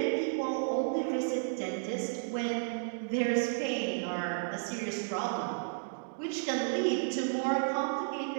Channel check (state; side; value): silent; left; digital silence